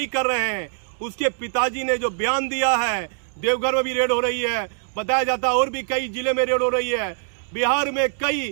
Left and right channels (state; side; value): silent; left; digital silence